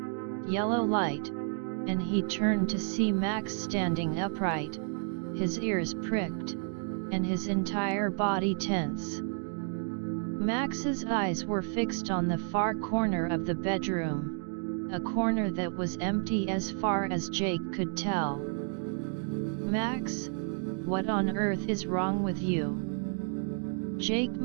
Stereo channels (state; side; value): silent; left; 57 dB below the other